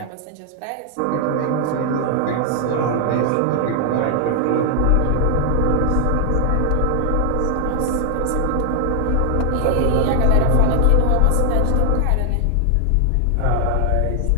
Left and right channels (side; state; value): both; different; correlation 0.00